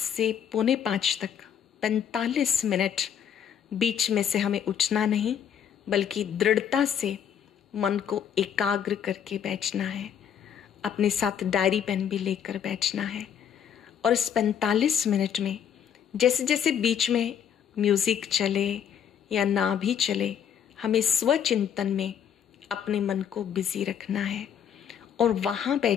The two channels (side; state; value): right; quieter; 8.6 dB